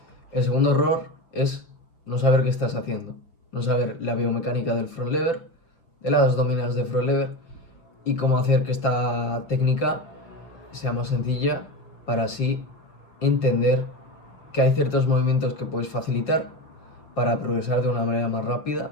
El segundo error es no saber qué estás haciendo, no saber la biomecánica del front lever, de las dominadas de front lever y cómo hacer que esta técnica sea más sencilla para así entender que hay ciertos movimientos que puedes facilitar para progresar de una manera más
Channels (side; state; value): right; late; 5.9 ms